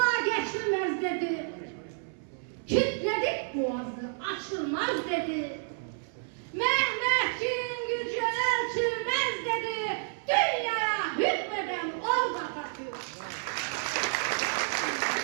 geçilmez dedi, kilitledik boğazı, açılmaz dedi. Mehmetçiğin gücü ölçülmez dedi, dünyaya hükmeden ol Atatürk.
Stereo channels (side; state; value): left; silent; 58 dB below the other